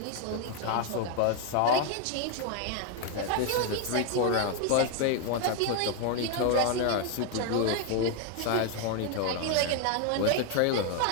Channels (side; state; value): both; different; correlation 0.01